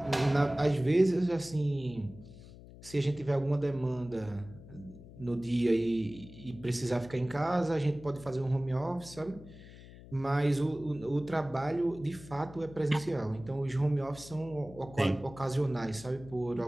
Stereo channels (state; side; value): noise; left; hum, 18 dB below the sound